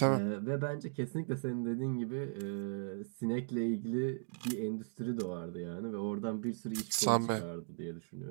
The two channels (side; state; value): left; silent; digital silence